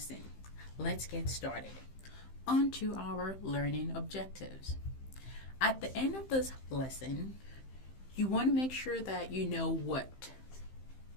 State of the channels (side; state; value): right; late; 15 ms